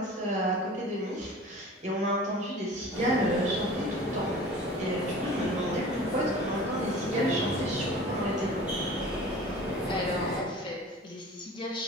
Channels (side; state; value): both; normal; correlation 0.41